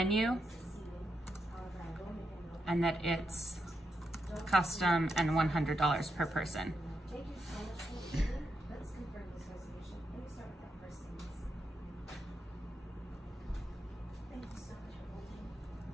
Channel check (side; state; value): both; normal; correlation 0.84